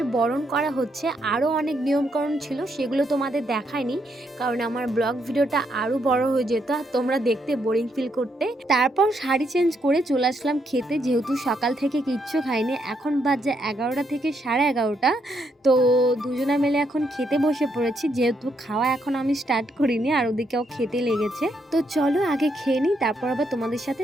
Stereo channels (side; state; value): both; normal; correlation 0.76